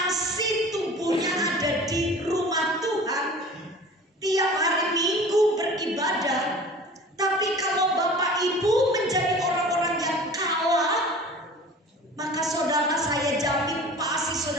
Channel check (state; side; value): normal; both; correlation 0.42